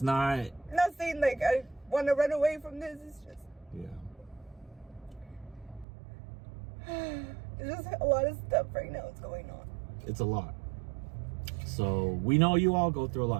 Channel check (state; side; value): drops out; left; at 5.9 s